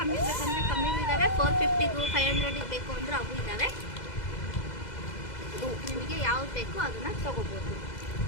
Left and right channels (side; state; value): right; late; 2.0 ms